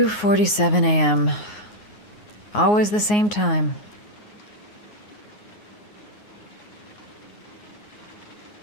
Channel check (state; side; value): late; right; 9.6 ms